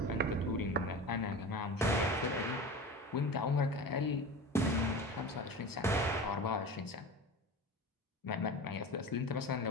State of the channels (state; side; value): normal; both; correlation 0.31